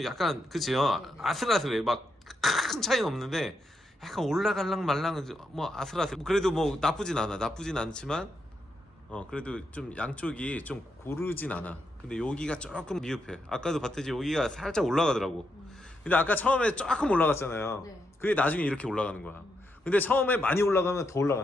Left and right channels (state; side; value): normal; both; correlation 0.82